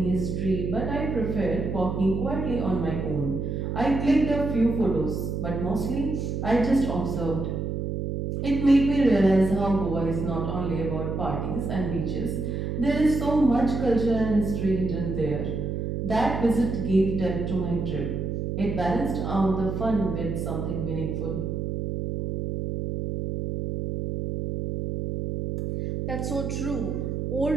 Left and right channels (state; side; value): noise; right; hum, 3 dB below the sound